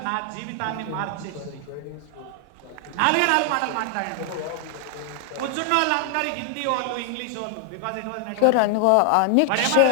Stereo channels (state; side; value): different; both; correlation 0.00